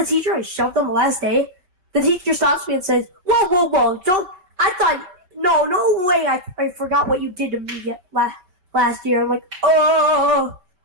teacher I shoved on the last day? The teacher stops me and says, whoa, don't. I thought, no way. I forgot what you did to me last year. I'm like, oh.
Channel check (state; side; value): late; left; 5.3 ms